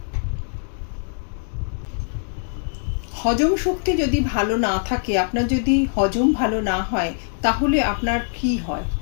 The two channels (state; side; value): silent; right; digital silence